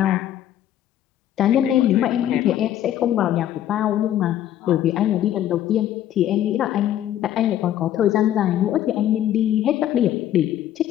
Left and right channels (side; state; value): right; quieter; 11.7 dB